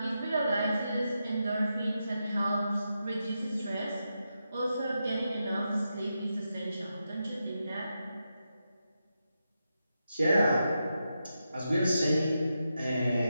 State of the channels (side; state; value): both; inverted; correlation -0.87